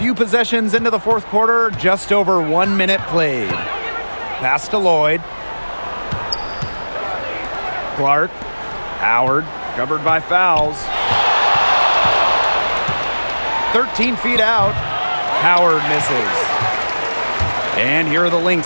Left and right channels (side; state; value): both; inverted; correlation -1.00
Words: possessions into the fourth quarter, just over 1 minute played. Pass to Lloyd. Clark. Howard, covered by fouls. 13 feet out. Howard misses. And here are the